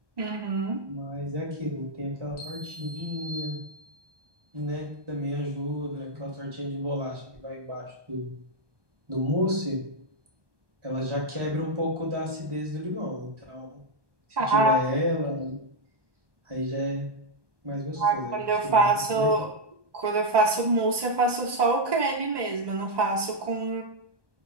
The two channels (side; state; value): left; late; 1.2 ms